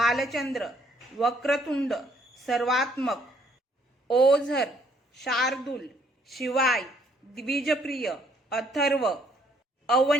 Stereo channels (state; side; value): normal; both; correlation 0.66